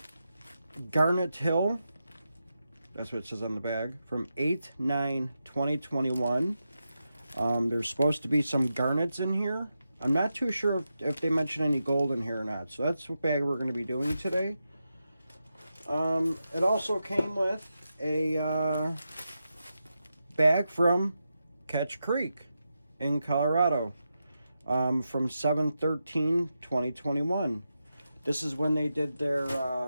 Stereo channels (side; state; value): both; inverted; correlation -0.88